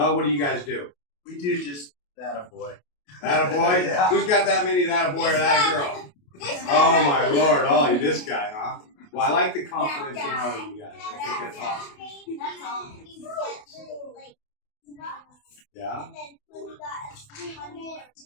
What do you guys do? We do just that a boy. That a boy? Yeah. Who's got that many that a boy or that a girl? Oh my Lord! Oh, this guy, huh? Well, I like the confidence in all of you guys. I think that's awesome. Yeah. And then when we got 300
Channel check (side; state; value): right; late; 28 ms